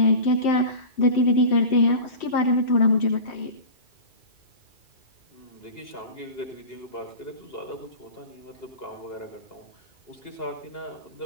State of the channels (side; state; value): right; late; 2.3 ms